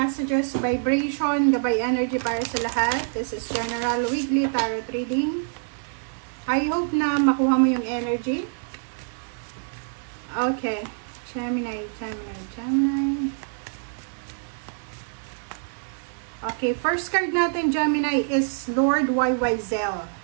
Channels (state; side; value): silent; left; digital silence